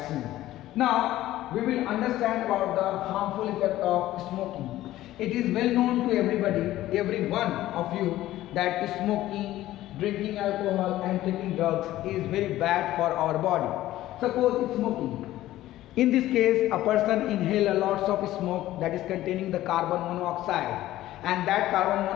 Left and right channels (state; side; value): quieter; right; 14.9 dB